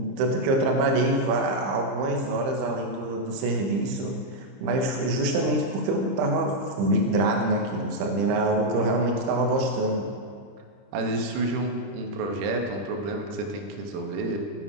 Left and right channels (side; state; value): left; late; 30 ms